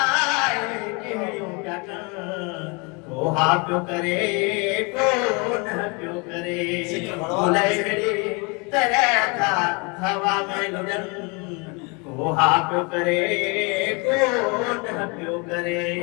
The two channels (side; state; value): right; quieter; 30.5 dB